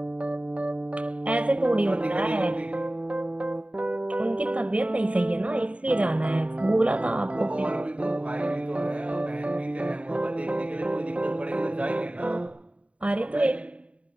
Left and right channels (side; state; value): left; late; 0.064 ms